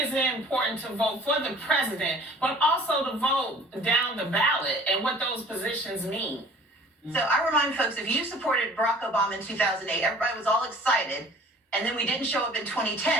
it important to vote for the president, but also to vote down the ballot and what those positions mean? So I remind folks, if you supported Barack Obama in 2008, everybody was all excited, and then we didn't show up in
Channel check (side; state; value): both; normal; correlation 0.49